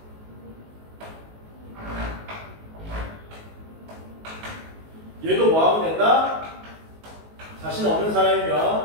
얘도 뭐하면 된다? 자신 없는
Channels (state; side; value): late; left; 19 ms